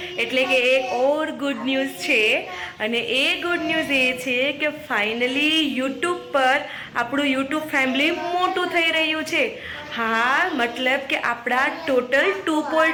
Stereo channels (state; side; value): identical; both; correlation 1.00